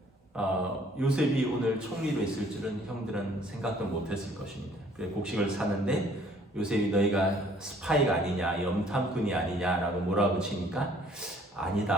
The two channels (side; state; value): both; normal; correlation 0.59